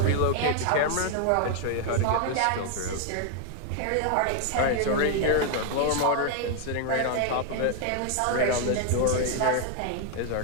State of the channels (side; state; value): both; different; correlation 0.00